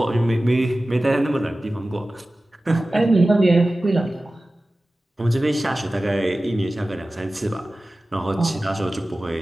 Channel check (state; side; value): normal; both; correlation 0.96